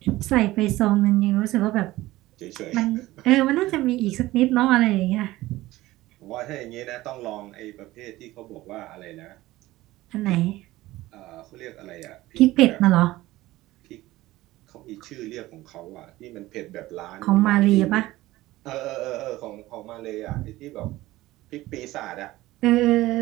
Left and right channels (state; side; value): quieter; left; 17.4 dB